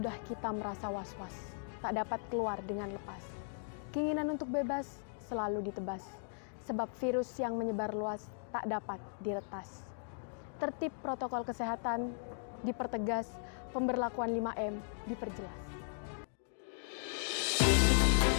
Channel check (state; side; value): silent; right; digital silence